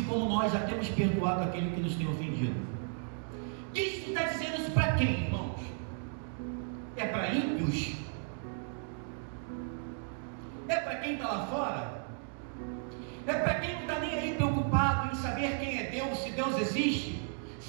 como nós já temos perdoado aquele que nos tem ofendido. Cristo está dizendo isso para quem, irmãos? É para ímpios? É para quem está lá fora? É para quem não está nem aí preocupado em saber quem é Deus, se Deus existe,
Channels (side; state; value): left; silent; 55 dB below the other